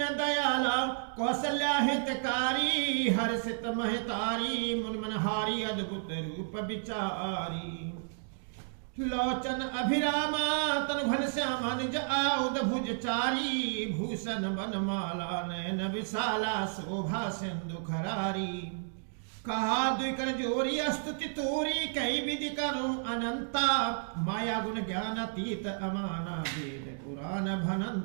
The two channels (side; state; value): left; silent; digital silence